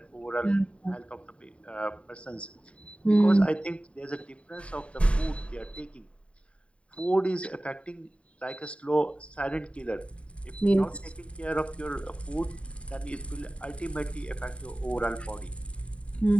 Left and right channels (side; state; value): right; late; 0.061 ms